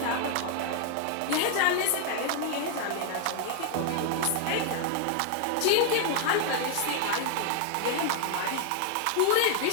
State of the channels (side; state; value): both; different; correlation 0.00